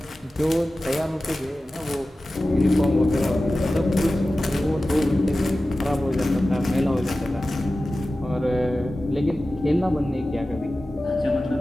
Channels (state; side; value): normal; both; correlation 0.95